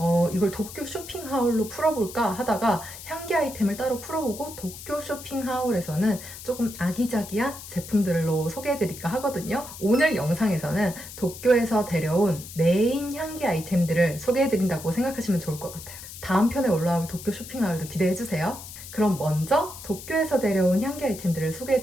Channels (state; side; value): noise; left; hiss, 13 dB below the sound